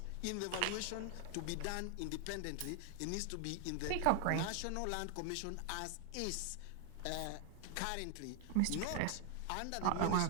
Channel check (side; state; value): both; different; correlation 0.00